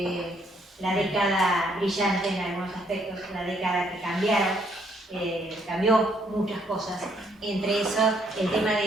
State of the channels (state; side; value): normal; both; correlation 0.69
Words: la década brillante en algunos aspectos, la década que cambió muchas cosas. Entre eso, el tema